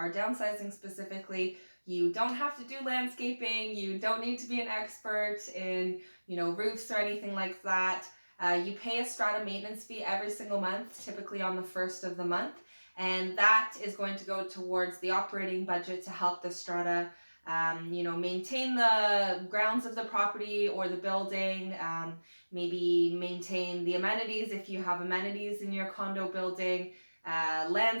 downsizing specifically. You don't have to do landscaping. You don't need to be an expert in, roofs or anything like that. You pay a strata maintenance fee every single month, typically on the first of the month. And that is going to go towards the operating budget to help the strata maintain the grounds of the property or the building, maybe maintain the amenities if you have amenities in your condo building,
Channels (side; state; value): both; inverted; correlation -1.00